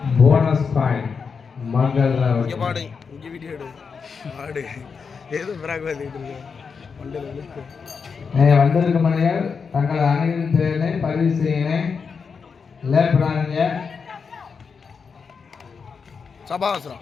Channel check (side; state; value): right; quieter; 5.6 dB